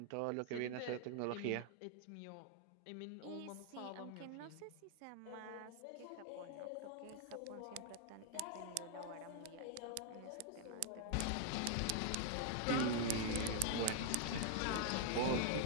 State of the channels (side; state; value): both; different; correlation 0.00